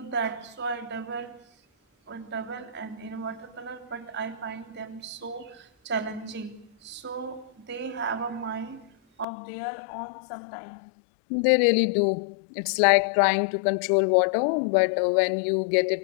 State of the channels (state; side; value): drops out; right; at 9.2 s